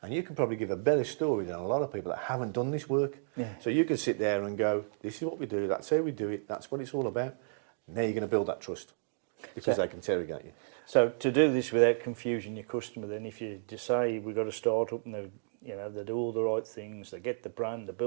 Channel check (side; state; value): left; silent; digital silence